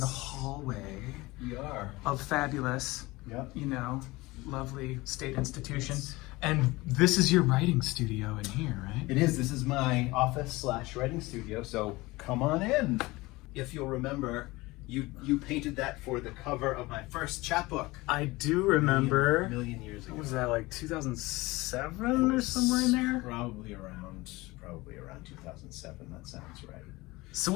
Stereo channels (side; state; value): right; quieter; 21.3 dB